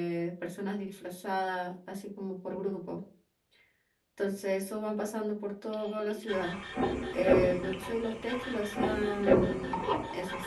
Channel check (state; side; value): identical; both; correlation 1.00